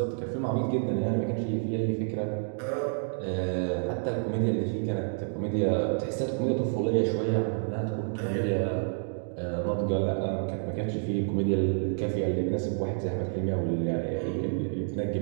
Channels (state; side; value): silent; left; 59 dB below the other